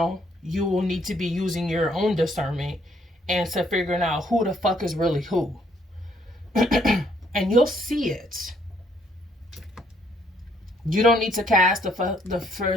you will need to be using your own discernment and to figuring out who the fuck is really who. And you'll see it. You don't need to cast the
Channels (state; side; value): normal; both; correlation 0.68